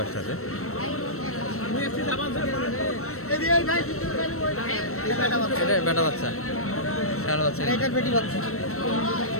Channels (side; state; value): right; late; 0.63 ms